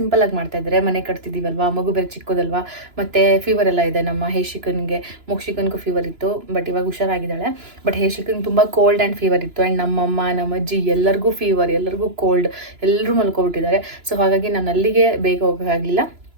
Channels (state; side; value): late; left; 2.9 ms